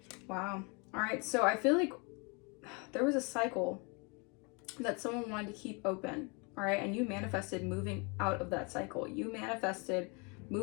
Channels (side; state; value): right; quieter; 31.6 dB